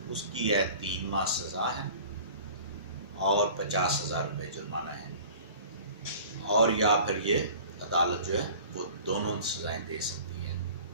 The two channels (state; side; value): inverted; both; correlation -0.44